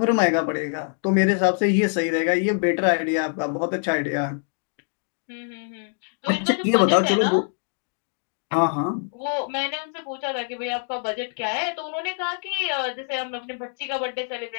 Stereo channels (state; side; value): silent; right; 59 dB below the other